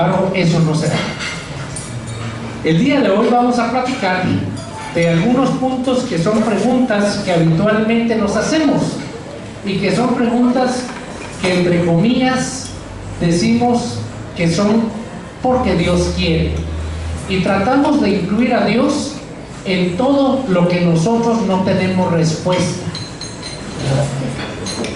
eso no se da. El día de hoy vamos a platicar de algunos puntos que son preguntas que habitualmente nos hacemos, y que son preguntas que, entre comillas, decimos que son porque Dios quiere, y tratamos de incluir a Dios en todo lo que nosotros no tenemos respuesta.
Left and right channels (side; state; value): both; identical; correlation 1.00